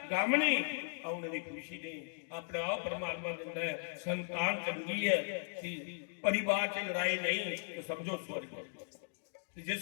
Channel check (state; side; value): silent; right; digital silence